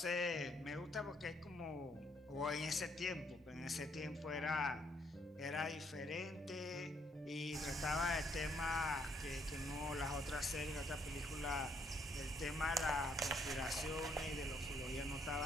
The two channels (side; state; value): both; normal; correlation 0.70